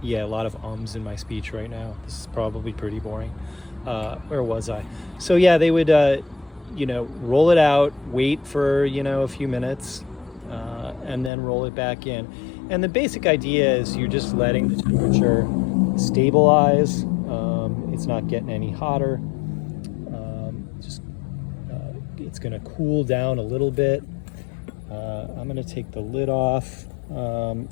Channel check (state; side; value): drops out; right; at 11.3 s